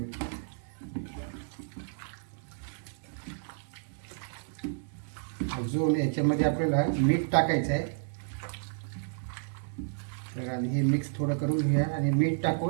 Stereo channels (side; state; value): left; silent; 57 dB below the other